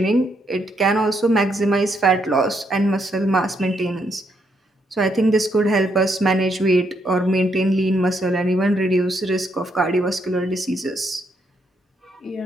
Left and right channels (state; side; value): normal; both; correlation 0.76